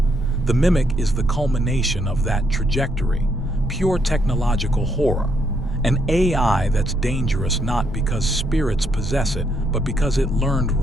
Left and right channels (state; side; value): normal; both; correlation 0.74